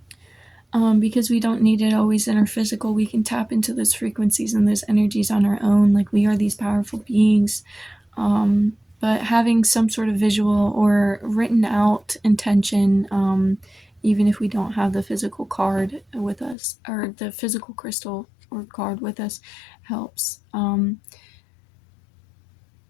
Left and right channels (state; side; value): drops out; right; at 16.6 s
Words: Because we don't need it always in our physical, we can tap into those frequencies and those energies on our own. Like we are these powerful beings. Um, but having some sort of visual or written out intention, even if we don't have the physical card with us or the physical crystal or card with us, helps.